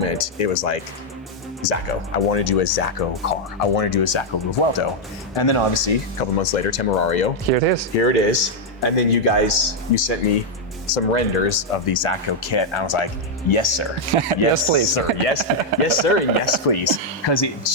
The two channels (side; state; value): both; normal; correlation -0.02